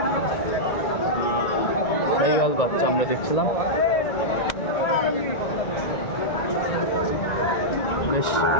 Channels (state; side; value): late; right; 1.9 ms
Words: শাহিওয়াল বাচ্চা আমরা দেখছিলাম, বেশ